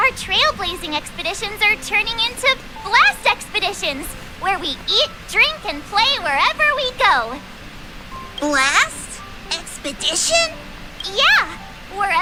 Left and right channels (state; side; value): identical; both; correlation 1.00